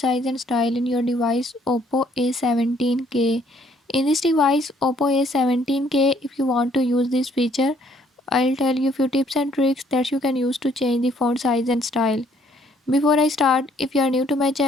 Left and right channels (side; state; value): both; normal; correlation 0.64